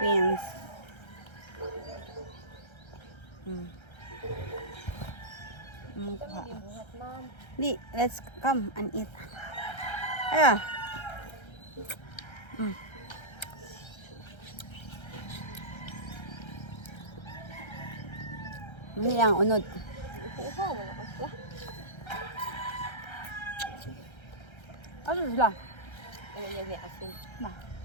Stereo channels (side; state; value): right; late; 1.3 ms